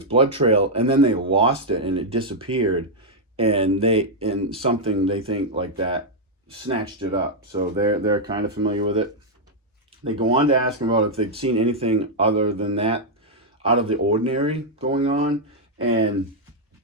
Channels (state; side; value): normal; both; correlation -0.03